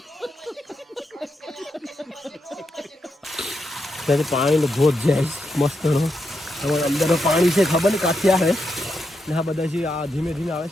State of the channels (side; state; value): both; normal; correlation 0.84